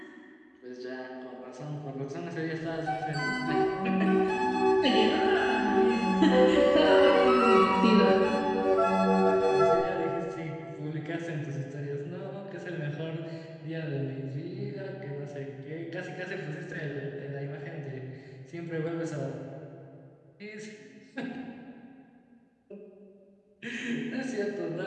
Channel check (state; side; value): identical; both; correlation 1.00